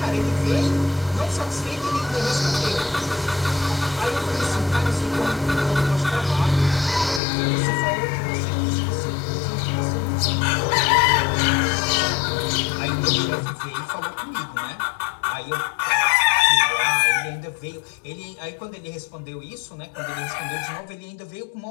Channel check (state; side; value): drops out; right; at 7.2 s